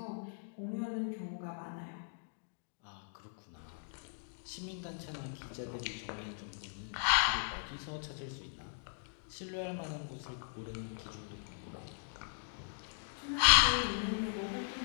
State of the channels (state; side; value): silent; right; digital silence